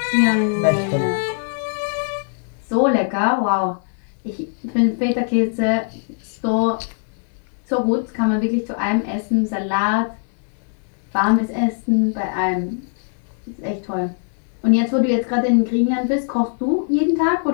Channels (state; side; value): silent; right; 65 dB below the other